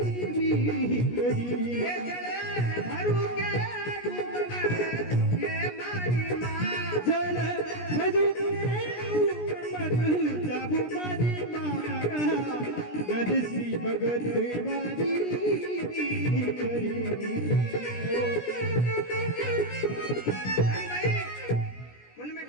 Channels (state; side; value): late; right; 17 ms